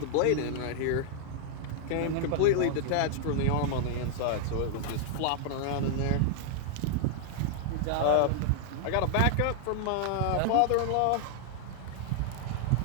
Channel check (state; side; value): different; both; correlation -0.01